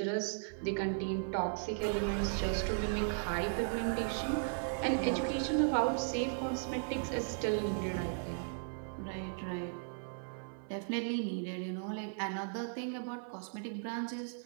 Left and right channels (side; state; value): left; silent; 53 dB below the other